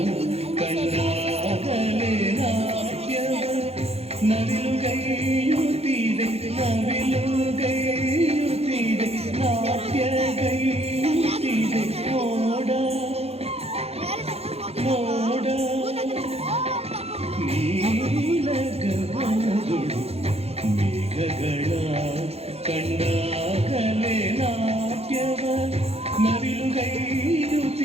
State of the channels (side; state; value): left; late; 0.30 ms